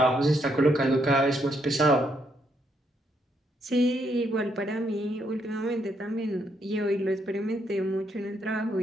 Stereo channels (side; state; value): both; normal; correlation 0.75